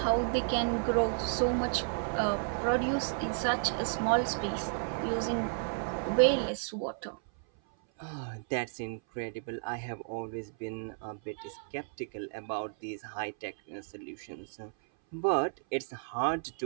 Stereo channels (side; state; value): left; silent; 56 dB below the other